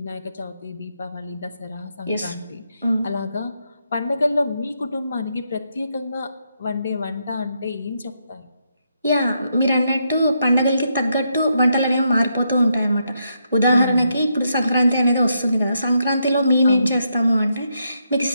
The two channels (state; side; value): inverted; both; correlation -0.79